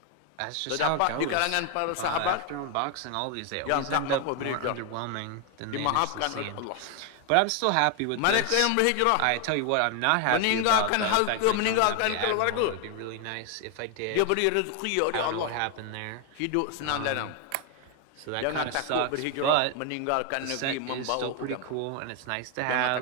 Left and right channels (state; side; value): different; both; correlation 0.01